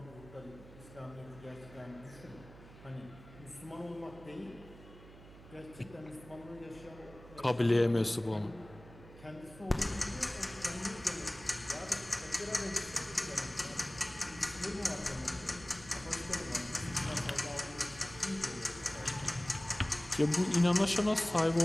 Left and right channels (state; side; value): noise; right; hum, 19 dB below the sound